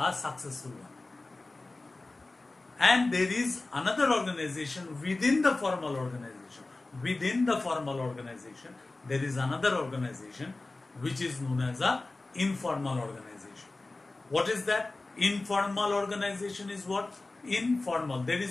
successful one. And there is another organization within the formal organization. Within the formal organization, there is another organization which is known as a informal organization. What is that? Informal organization is what? Informal. There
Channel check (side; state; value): right; quieter; 3.2 dB